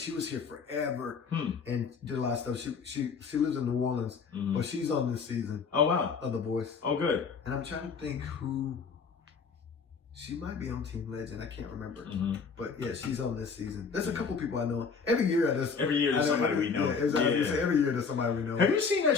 was here forever and did a lot of stuff. She lives in New Orleans, but she's on this season. Oh wow, of The Voice. Oh good. And I'm trying to think who. She might be on Team Legend. I can't remember. But yeah, she's on this season. There's a couple people I know. Every year there's somebody we know. Yeah, exactly. Yeah. Every year there's somebody we know. Have you seen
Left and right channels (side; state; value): right; quieter; 5.4 dB